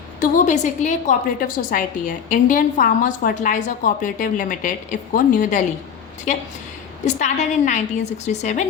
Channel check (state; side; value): quieter; right; 7.5 dB